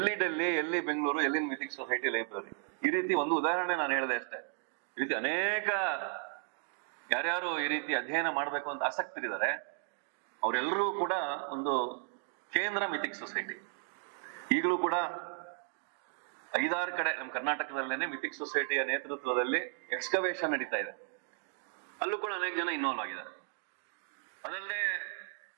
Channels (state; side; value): silent; left; 55 dB below the other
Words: ಡೆಲ್ಲಿ, ಎಲ್ಲಿ ಬೆಂಗಳೂರು, ಎಲ್ಲಿ ಮಿಥಿಕ್ ಸೊಸೈಟಿ ಲೈಬ್ರರಿ. ಈ ರೀತಿ ಒಂದು ಉದಾಹರಣೆ ನಾನು ಹೇಳಿದೆ ಅಷ್ಟೇ. ಈ ರೀತಿ ಅನೇಕ ಯಾರ್ಯಾರು ಈ ರೀತಿ ಅಧ್ಯಯನ ಮಾಡ್ಬೇಕು ಅಂತ ಆಸಕ್ತರಿದ್ದಾರೆ, ಅವರೆಲ್ಲರೂ ಕೂಡ ಒಂದು ಕೇಂದ್ರ ಮಿಥಿಕ್ ಸೊಸೈಟಿ. ಈಗಲೂ ಕೂಡ 5-6 ಕಡೆ ನಮ್ಮ ಕರ್ನಾಟಕದಲ್ಲೇನೆ ಮಿಥಿಕ್ ಸೊಸೈಟಿಯ ನೇತೃತ್ವದಲ್ಲಿ ಎಕ್ಸ್ಕವೇಷನ್ ನಡೀತಾ ಇದೆ. ಅಲ್ಲೂ ಕೂಡ ಅನೇಕ ಜನ ಇನ್ವಾಲ್ವ್ ಆಗಿದ್ದಾರೆ. ಅದಲ್ಲದೆ